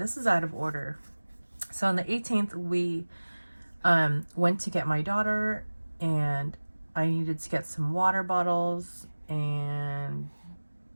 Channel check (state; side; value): inverted; both; correlation -1.00